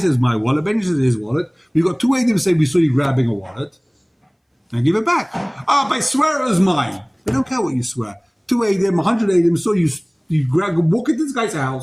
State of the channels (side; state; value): both; identical; correlation 1.00